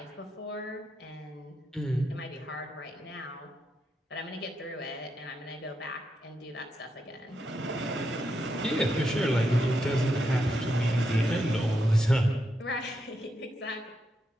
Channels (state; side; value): normal; both; correlation 0.83